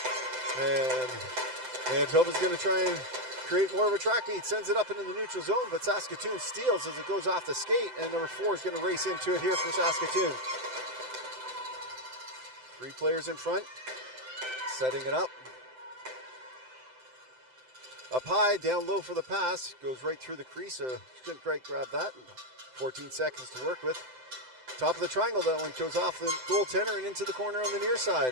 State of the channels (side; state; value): left; late; 7.8 ms